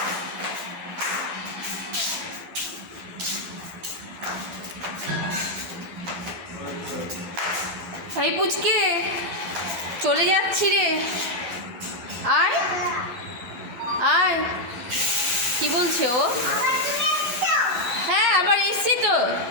এই পুচকে, চলে যাচ্ছি রে, আয় আয়। কি বলছে ও? এসছি তো,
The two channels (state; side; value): late; left; 11 ms